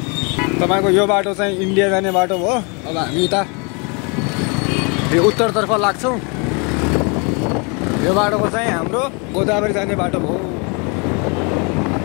तपाईँको यो बाटो चाहिँ इन्डिया जाने बाटो हो। अब हामी यता यो उत्तरतर्फ लाग्छौँ। यो बाटोको चाहिँ हाम्रो गोदावरी जाने बाटो हो।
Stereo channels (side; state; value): right; quieter; 32.5 dB